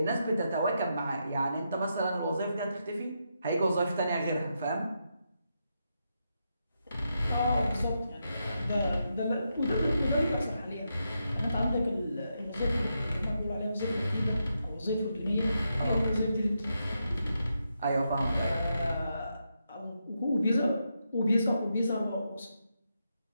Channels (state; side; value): inverted; both; correlation -0.84